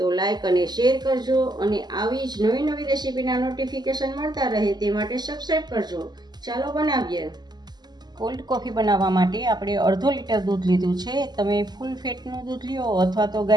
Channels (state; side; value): late; left; 0.20 ms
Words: તો લાઈક અને શેર કરજો અને આવી જ નવી નવી રેસીપીના નોટિફિકેશન મળતા રહે તે માટે સબસ્ક્રાઈબ કરજો। ચાલો બનાવીએ। કોલ્ડ કોફી બનાવવા માટે આપણે અડધો લીટર દૂધ લીધું છે। તમે ફૂલ ફેટનું દૂધ લ્યો અથવા તો